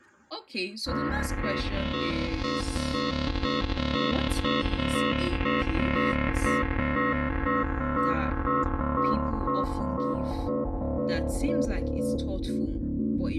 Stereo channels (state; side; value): identical; both; correlation 1.00